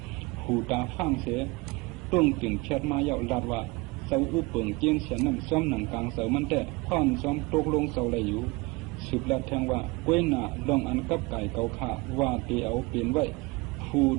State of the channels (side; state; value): left; quieter; 25.0 dB